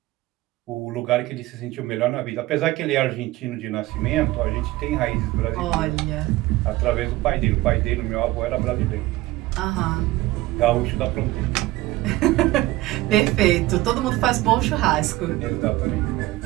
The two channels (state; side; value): quieter; left; 18.1 dB